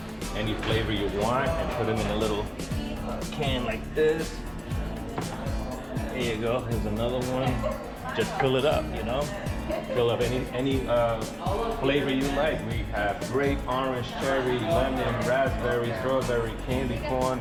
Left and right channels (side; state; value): both; identical; correlation 1.00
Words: any flavor you want and put them in a little can like this. There you go. Here's another one. Just fill it up, you know. Fill up any flavor you like. We have grape, orange, cherry, lemon, raspberry, strawberry, candy corn,